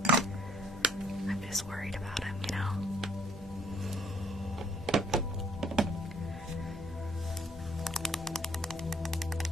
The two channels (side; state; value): both; normal; correlation 0.62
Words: I'm just worried about him, you know?